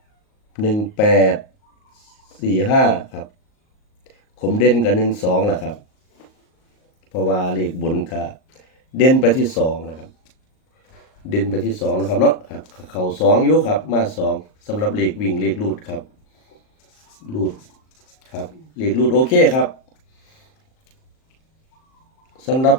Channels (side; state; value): right; late; 38 ms